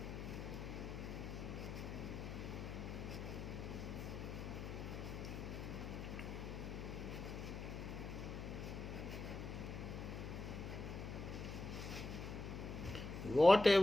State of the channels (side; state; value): left; noise; hum, 6 dB below the sound